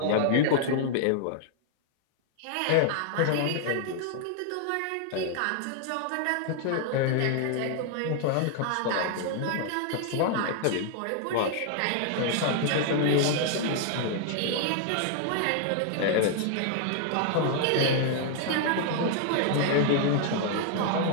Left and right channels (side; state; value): both; different; correlation 0.00